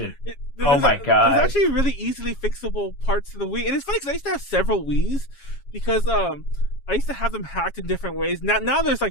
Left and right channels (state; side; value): late; right; 7.3 ms